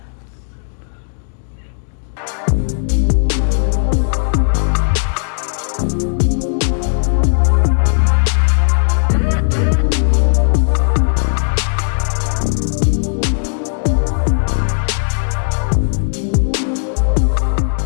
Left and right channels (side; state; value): right; silent; digital silence